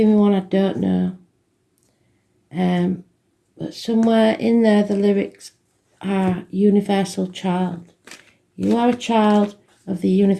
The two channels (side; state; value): both; identical; correlation 1.00